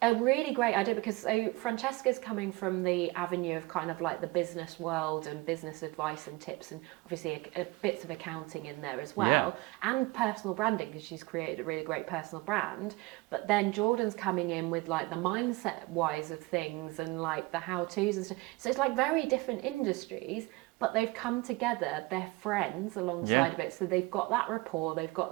a really great idea, because so Francesca's coming from the avenue of kind of like the business world and business advice and tips, and obviously a bits of accounting in there as well, and personal branding, because she's created a really great personal brand. But then Jordan's coming in with like the mindset wise of things and like the how-tos and stuff. So it's like very different industries, but they've come together, they're friends alongside of it, so they've got that rapport, they've got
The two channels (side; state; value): left; quieter; 22.8 dB